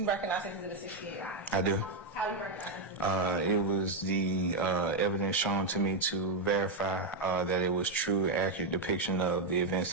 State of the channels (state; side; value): quieter; left; 3.2 dB